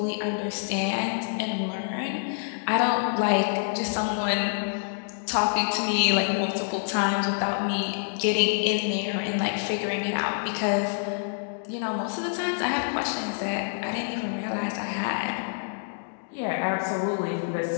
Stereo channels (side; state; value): right; silent; digital silence